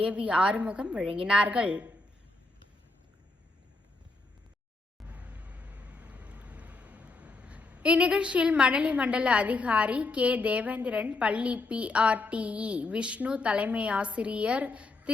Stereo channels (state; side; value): quieter; right; 3.4 dB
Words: AV ஆறுமுகம் வழங்கினார்கள். இந்நிகழ்ச்சியில் மணலி மண்டல அதிகாரி K. தேவேந்திரன், பள்ளி PRTE விஷ்ணு, தலைமை ஆசிரியர்